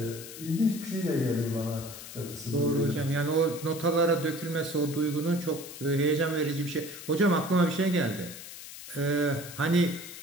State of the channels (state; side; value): noise; left; hiss, 13 dB below the sound